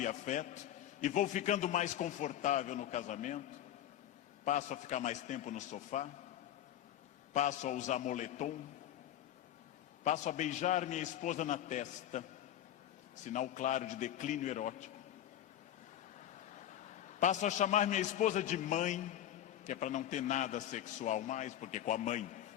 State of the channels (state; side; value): quieter; right; 11.7 dB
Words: afeto, e vou ficando mais confortável no casamento, passo a ficar mais tempo no sofá, passo a usar moletom, passo a beijar minha esposa na testa, sinal claro de declínio erótico. Passo a chamar minha esposa de mãe, que é para não ter nada sexual mais, porque com a mãe